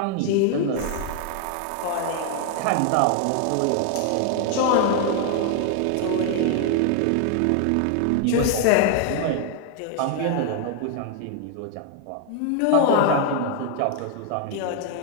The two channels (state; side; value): different; both; correlation 0.00